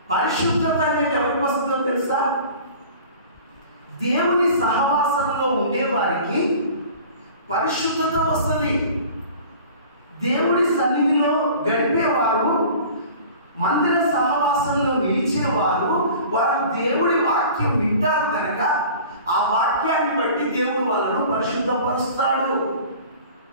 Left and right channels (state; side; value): inverted; both; correlation -0.43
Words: పరిశుద్ధత అనేది ఎవరికి వస్తుందో తెలుసా? దేవుని సహవాసంలో ఉండేవారికి పరిశుద్ధత వస్తుంది. దేవుడి సన్నిధిలో గడిపేవారు, మందిర సహవాసంలో నిలిచేవారు, వారు దేవుడి వాక్యం వింటారు కనుక ఆ వాక్యాన్ని బట్టి దేవుడు వాళ్ళను పరిశుద్ధపరుస్తాడు.